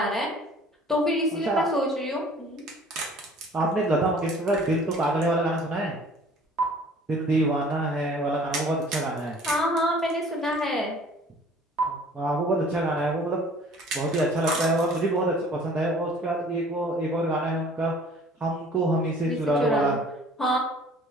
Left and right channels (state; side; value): normal; both; correlation 0.51